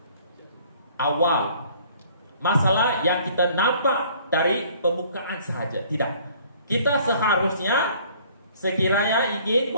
awal, masalah yang kita nampak dari permukaan sahaja. Tidak. Kita seharusnya sekiranya ingin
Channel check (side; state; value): both; inverted; correlation -0.56